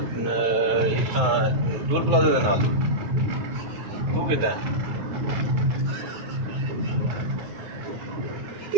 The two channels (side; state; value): left; late; 9.3 ms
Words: टूल प्लाजे के नाल तू कितना है?